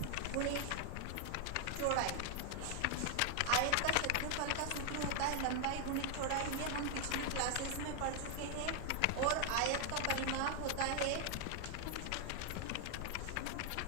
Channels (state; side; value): different; both; correlation 0.00